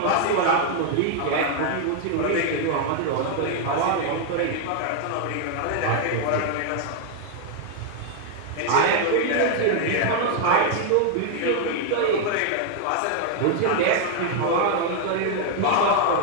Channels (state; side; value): different; both; correlation 0.00